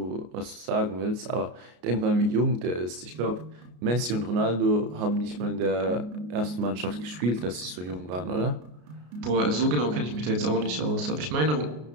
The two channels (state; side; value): late; left; 33 ms